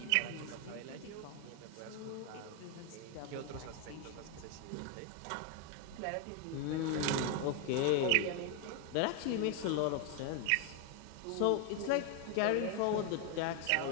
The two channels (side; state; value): both; different; correlation 0.01